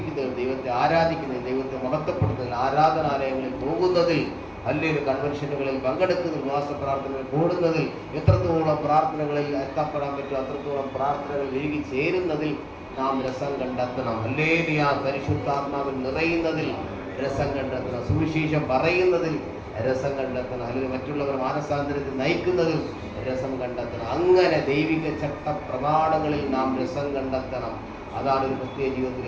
ദൈവത്തെ ആരാധിക്കുന്നതിൽ, ദൈവത്തെ മഹത്വപ്പെടുന്നതിൽ, ആരാധനാലയങ്ങളിൽ പോകുന്നതിൽ, അല്ലെങ്കിൽ കൺവെൻഷനുകളിൽ പങ്കെടുക്കുന്നതിൽ, ഉപവാസ പ്രാർത്ഥനകൾ കൂടുന്നതിൽ, എത്രത്തോളം പ്രാർത്ഥനകളിൽ എത്തപ്പെടാൻ പറ്റും അത്രത്തോളം പ്രാർത്ഥനകൾ ഒഴുകി ചേരുന്നതിൽ നാം രസം കണ്ടെത്തണം. ഹല്ലേലൂയ. പരിശുദ്ധാത്മാവിൽ നിറയുന്നതിൽ രസം കണ്ടെത്തണം. സുവിശേഷം പറയുന്നതിൽ രസം കണ്ടെത്തണം. അല്ലെങ്കിൽ മറ്റുള്ളവർ മാനസാന്തരത്തിൽ നയിക്കുന്നതിൽ രസം കണ്ടെത്തണം. അങ്ങനെ ദൈവിക ചട്ട പ്രമാണങ്ങളിൽ നാം രസം കണ്ടെത്തണം. അതാണ് ഒരു ക്രിസ്തീയ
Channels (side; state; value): both; identical; correlation 1.00